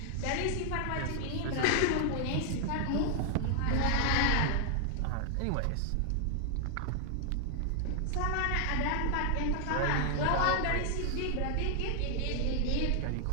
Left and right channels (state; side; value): different; both; correlation 0.00